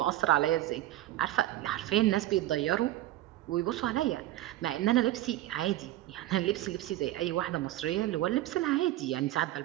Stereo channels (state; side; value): quieter; left; 14.9 dB